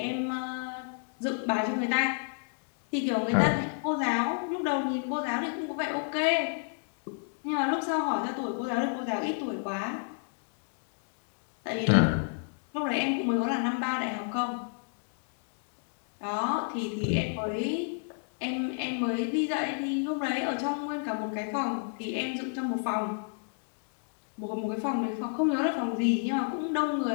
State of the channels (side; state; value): right; silent; 57 dB below the other